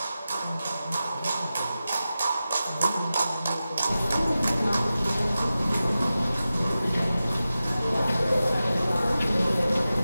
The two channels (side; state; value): both; inverted; correlation -0.93